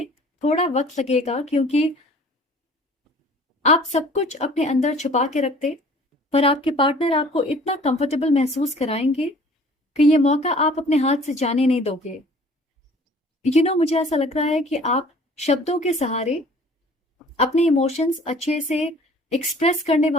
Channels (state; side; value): normal; both; correlation 0.51